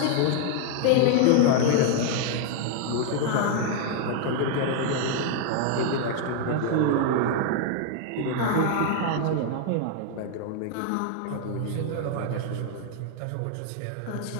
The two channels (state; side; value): different; both; correlation 0.00